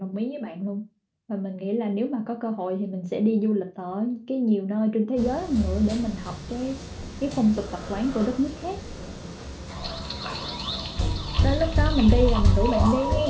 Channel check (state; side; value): identical; both; correlation 1.00